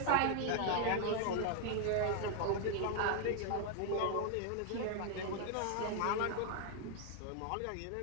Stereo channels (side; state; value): both; different; correlation 0.00